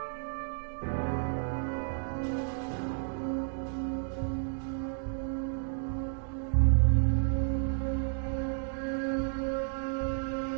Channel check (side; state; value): left; silent; digital silence